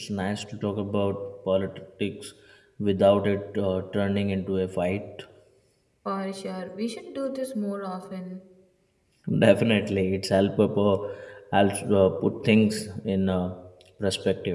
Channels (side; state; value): both; identical; correlation 1.00